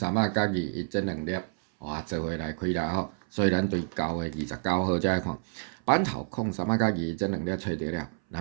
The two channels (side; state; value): left; silent; 59 dB below the other